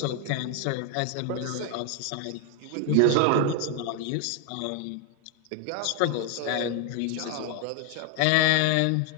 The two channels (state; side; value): different; both; correlation 0.00